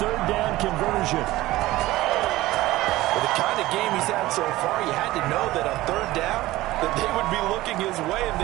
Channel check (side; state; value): left; quieter; 17.4 dB